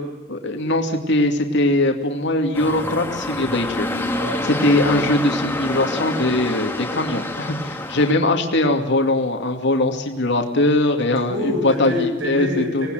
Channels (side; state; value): both; normal; correlation 0.25